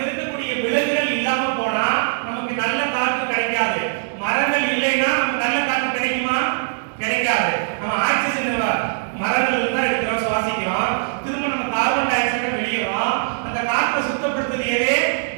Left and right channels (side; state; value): left; silent; digital silence